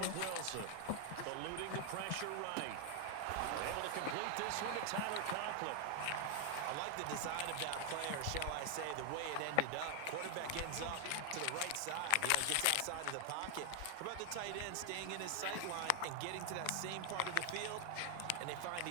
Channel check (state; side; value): different; both; correlation 0.00